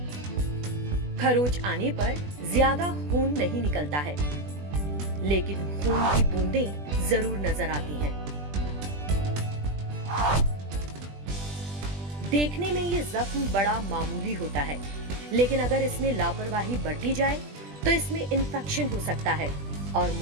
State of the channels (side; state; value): left; late; 20 ms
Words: खरोच आने पर ज्यादा खून नहीं निकलता है, लेकिन खून की बूंदें जरूर नजर आती हैं। देखने में ये जख्म बड़ा मामूली होता है, लेकिन अगर इसमें लापरवाही बरती जाए तो इसमें इन्फेक्शन हो सकता है और